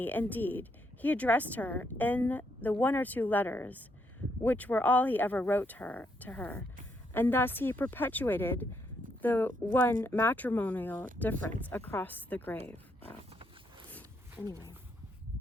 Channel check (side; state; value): both; normal; correlation 0.76